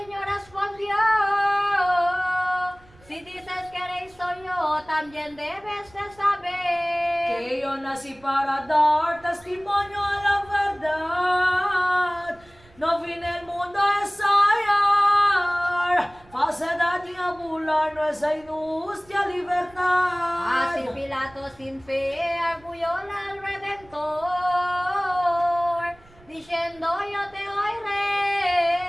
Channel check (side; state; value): right; noise; rumble, 26 dB below the sound